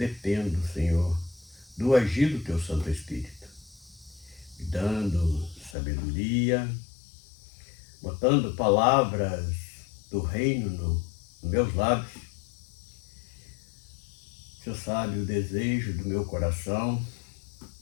Senhor, do agir do Teu Santo Espírito, me dando sabedoria, botando palavras do reino nos meus lábios. O Senhor sabe o desejo do meu coração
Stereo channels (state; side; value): drops out; right; at 5.8 s